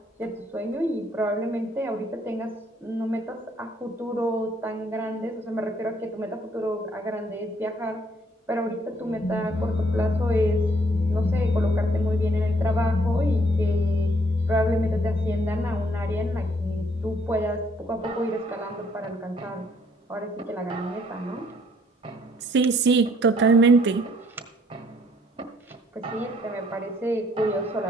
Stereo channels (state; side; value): normal; both; correlation 0.65